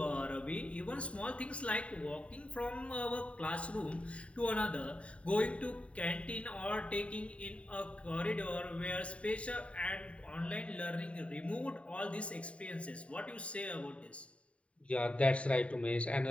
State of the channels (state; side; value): late; right; 0.063 ms